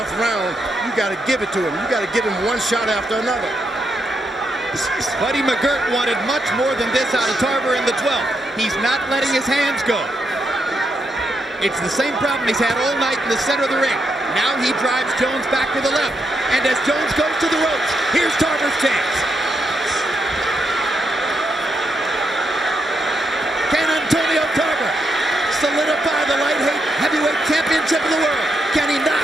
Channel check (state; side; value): normal; both; correlation 0.81